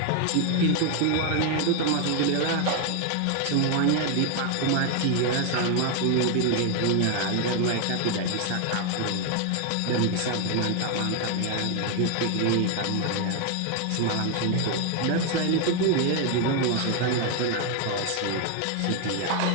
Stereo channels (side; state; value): both; different; correlation 0.00